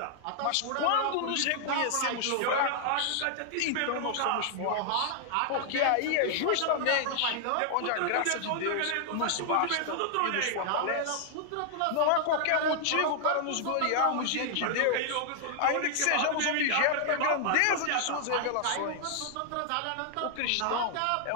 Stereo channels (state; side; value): different; both; correlation -0.01